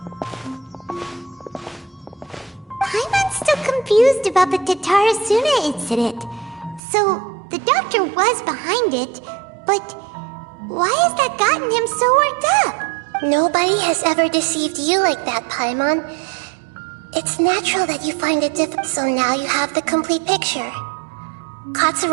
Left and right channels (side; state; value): left; drops out; at 6.8 s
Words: Paimon's still confused about the Tatarasuna incident. So, the doctor was behind it, but why has that gotten him so worked up? Nobody has ever deceived you like that, Paimon. It's natural that you find it difficult, so now you have the complete picture.